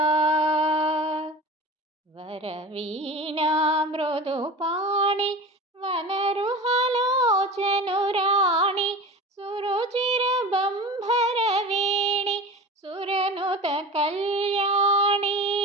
ವರವೀಣಾ ಮೃದು ಪಾಣಿ ವನರುಹಲೋಚನುರಾಣಿ ಸುರುಚಿರ ಬಂಭರ ವೇಣಿ ಸುರನುತ ಕಲ್ಯಾಣಿ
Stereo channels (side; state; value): both; normal; correlation 0.33